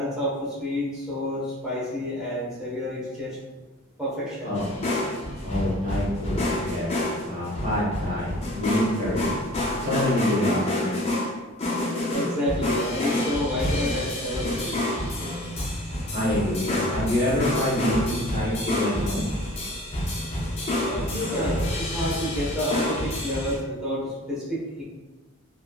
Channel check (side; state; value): both; normal; correlation 0.46